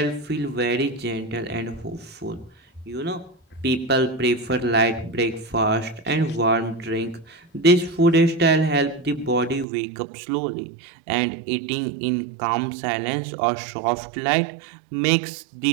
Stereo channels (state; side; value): drops out; left; at 9.7 s